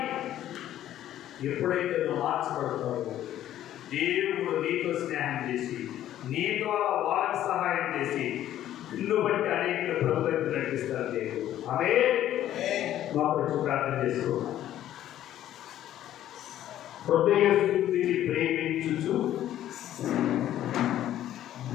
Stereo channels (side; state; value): right; quieter; 12.3 dB